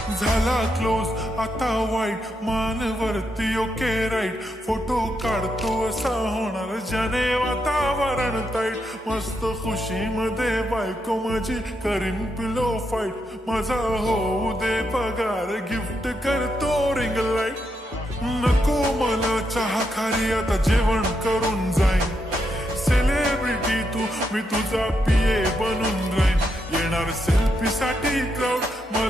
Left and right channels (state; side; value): normal; both; correlation 0.82